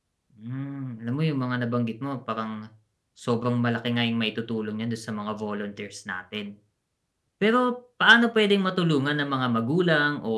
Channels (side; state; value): both; identical; correlation 1.00